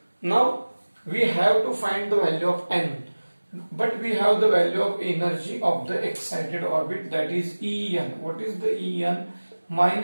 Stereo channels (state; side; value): inverted; both; correlation -1.00